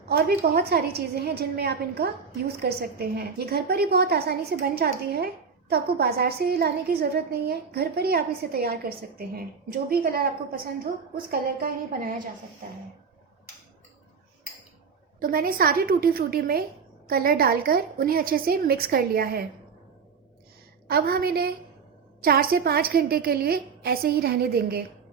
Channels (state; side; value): quieter; left; 5.7 dB